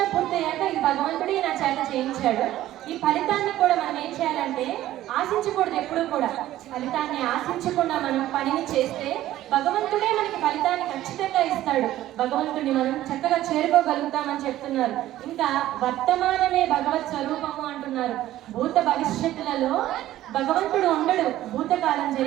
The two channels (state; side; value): quieter; left; 14.2 dB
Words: పూర్తయ్యాక ఈ భగవంతుడే నా చేత చేయించాడు. ఈ ఫలితాన్ని కూడా మనం ఏం చేయాలంటే ఆశించకూడదు. ఎప్పుడూ కూడా ఫలితాన్ని ఆశించకుండా మనం పనిని చేస్తే భగవంతుడే మనకి ఫలితాన్ని ఖచ్చితంగా ఇస్తాడు. భగవంతుడిని మనం చక్కగా చేరుకోగలుగుతామని చెప్తున్నారు. ఇంకా వర్తమానమే భగవత్ స్వరూపము అంటున్నారు. భూత భవిష్యత్తులలో భగవంతుడు ఉండడు. భూతకాలం